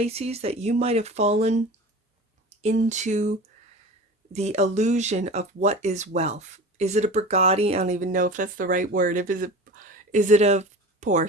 that you might have fallen into the illusion of what is wealth. Is it a Bugatti? I don't even know if that's the right word. Is it a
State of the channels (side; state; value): both; normal; correlation 0.35